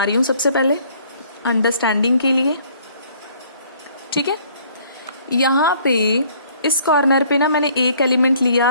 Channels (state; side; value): inverted; both; correlation -0.59